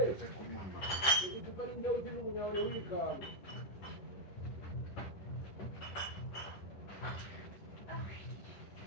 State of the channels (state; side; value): late; right; 11 ms